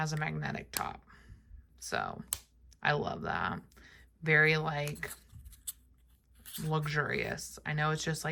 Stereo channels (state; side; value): identical; both; correlation 1.00